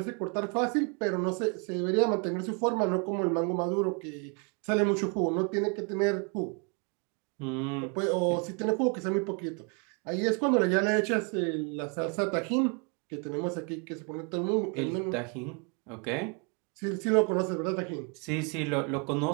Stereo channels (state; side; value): quieter; left; 35.7 dB